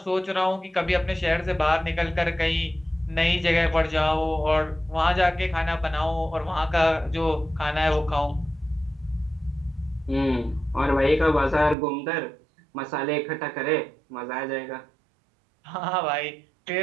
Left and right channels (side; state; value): left; drops out; at 11.8 s